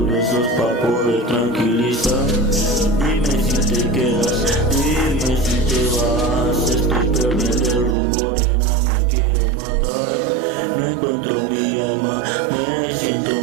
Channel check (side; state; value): left; drops out; at 8.0 s